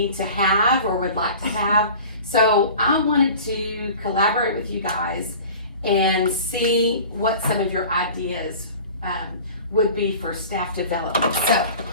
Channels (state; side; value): inverted; both; correlation -0.41